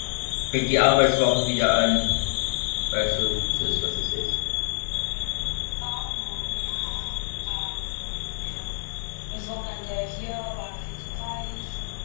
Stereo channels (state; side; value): silent; right; digital silence